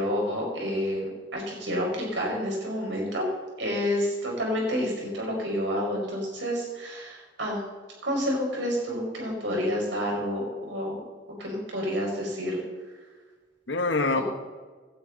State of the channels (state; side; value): normal; both; correlation 0.38